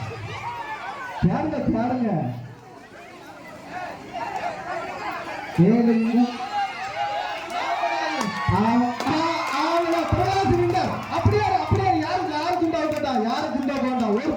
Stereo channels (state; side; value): identical; both; correlation 1.00